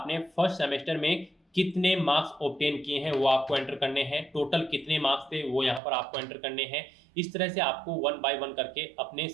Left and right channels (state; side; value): drops out; left; at 5.8 s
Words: फर्स्ट सेमेस्टर में कितने मार्क्स ऑब्टेन किए हैं वो आपको एंटर करने हैं। टोटल कितने मार्क्स थे वो यहाँ पर आपको एंटर करने हैं। इस तरह से आपको 1 बाय 1 करके अपने